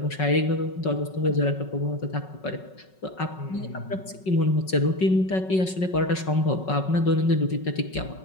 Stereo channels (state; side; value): late; right; 5.4 ms